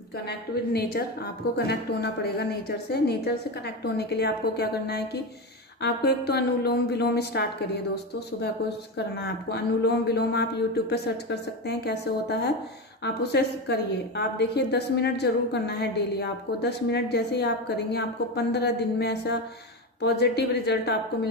विद नेचर, आपको कनेक्ट होना पड़ेगा नेचर से। नेचर से कनेक्ट होने के लिए आपको क्या करना है कि आपको एक तो अनुलोम विलोम स्टार्ट करिए दोस्तों, सुबह को करना है आपको अनुलोम विलोम। आप यूट्यूब पे सर्च कर सकते हैं कैसे होता है, आप उसे करिए। आप देखिए 10 मिनट जरूर करना है डेली आपको। 10 मिनट जैसे ही आप करेंगे, आपको 15 दिन में ऐसा पॉजिटिव रिजल्ट आपको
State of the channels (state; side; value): normal; both; correlation 0.17